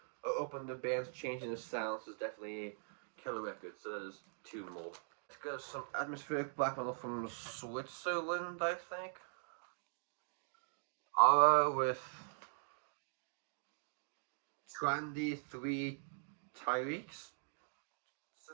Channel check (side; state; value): left; silent; digital silence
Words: are open to bands changing their sounds, it's definitely a killer record. So that is two more. Let's go to some atmospheric black metal from Switzerland, I think. With Trendy 3 Tyreeks. Does